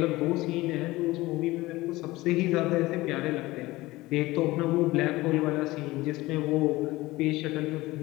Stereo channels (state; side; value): quieter; right; 19.4 dB